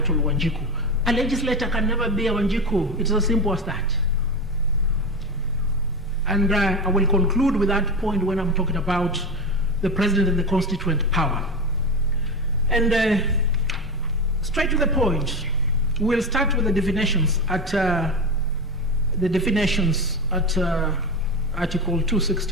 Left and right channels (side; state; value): both; normal; correlation 0.20